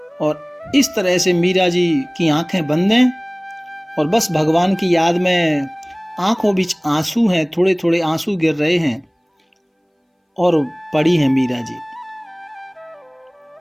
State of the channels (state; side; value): identical; both; correlation 1.00